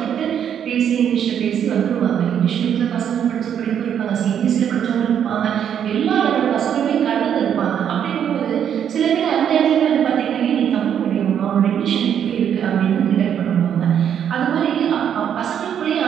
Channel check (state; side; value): quieter; left; 8.9 dB